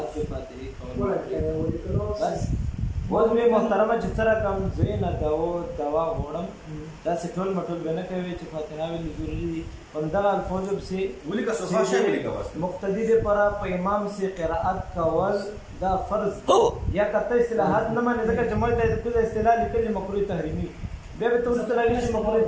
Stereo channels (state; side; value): identical; both; correlation 1.00